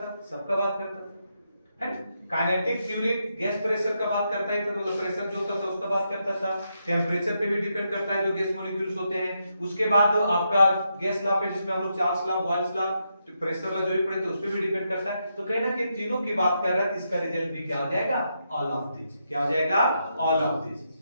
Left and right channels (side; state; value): both; inverted; correlation -0.82